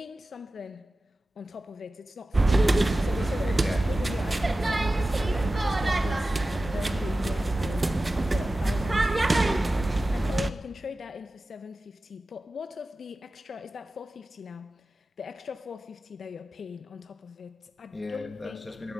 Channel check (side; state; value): both; normal; correlation 0.95